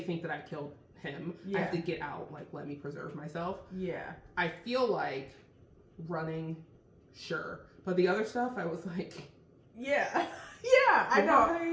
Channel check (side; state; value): both; identical; correlation 1.00